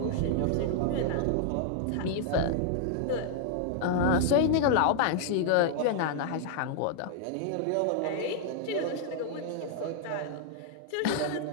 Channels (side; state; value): both; different; correlation -0.01